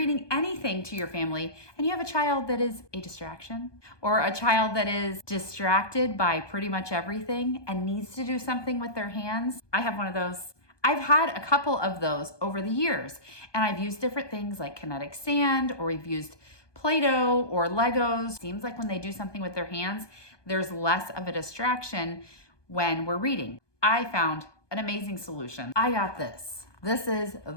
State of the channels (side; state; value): right; late; 1.2 ms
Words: anything to your family, and you have a child that is a distraction, or a child that is distracted by pretty much everything and needs to do something with their hands? I have one of those. I've had a couple of those over the years, and I've used different things like kinetic sand, or we've used Play-Doh or Legos. Seems like when they do something with their hands, there's less of a distraction when we're reading. I found an amazing solution. I got this. This is